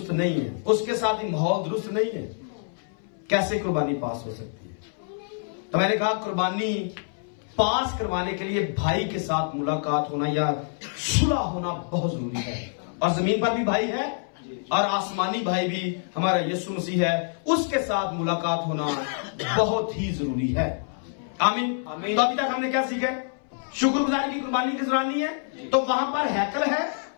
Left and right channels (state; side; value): silent; right; 61 dB below the other